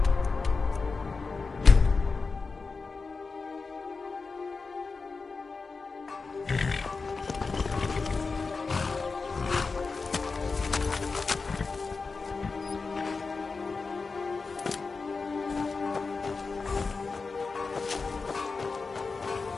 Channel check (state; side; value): quieter; right; 4.4 dB